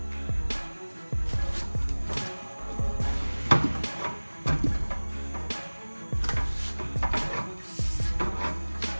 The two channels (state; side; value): inverted; both; correlation -1.00